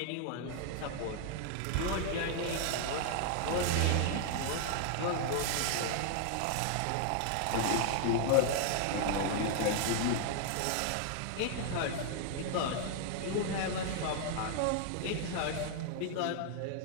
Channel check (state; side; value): different; both; correlation 0.00